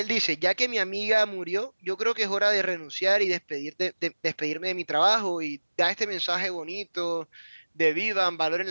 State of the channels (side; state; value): both; inverted; correlation -1.00